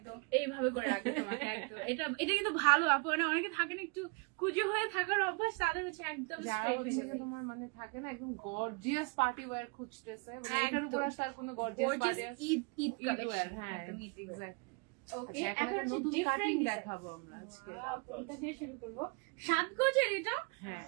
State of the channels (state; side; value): quieter; left; 32.9 dB